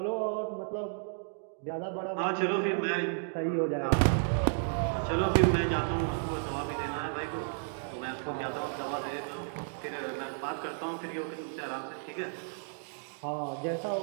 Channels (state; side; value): silent; left; digital silence